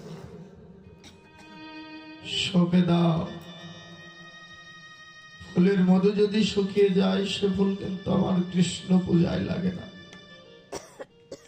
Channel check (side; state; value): both; identical; correlation 1.00